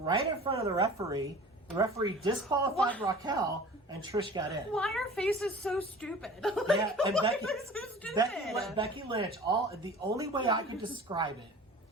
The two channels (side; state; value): both; normal; correlation 0.42